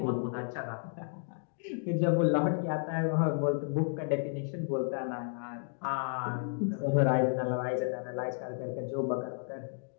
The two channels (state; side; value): silent; right; digital silence